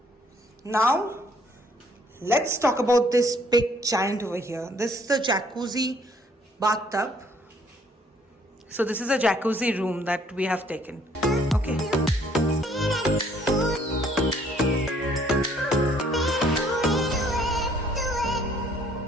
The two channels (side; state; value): both; normal; correlation 0.63